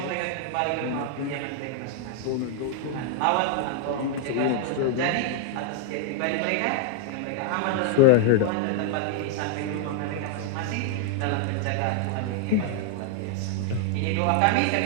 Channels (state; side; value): different; both; correlation 0.00